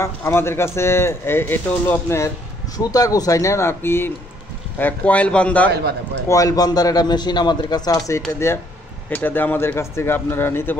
আমাদের কাছে এটা হলো আপনার সুতা গোছাই না নাকি কয়েল বান্দার একটা মেশিন আমাদের কাছে আছে। এটা দিয়ে আমাদের কাছ থেকে আপনারা নিতে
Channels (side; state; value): both; normal; correlation 0.66